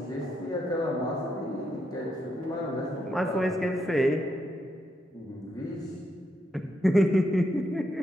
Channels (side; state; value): both; normal; correlation 0.80